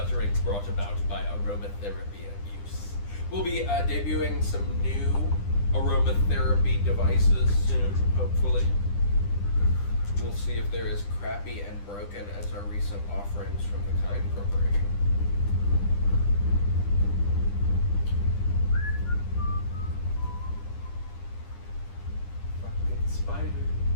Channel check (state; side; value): late; right; 9.9 ms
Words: brought about by aromatherapy abuse. We'll be debuting some new aromatherapy devices soon, hopefully. We'll see if they're as crappy and broken as our recent offerings from the Kind Corporation. Spiders,